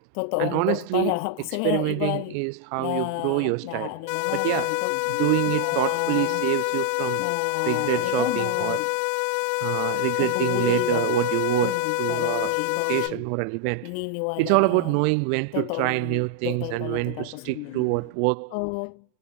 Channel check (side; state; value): both; different; correlation 0.00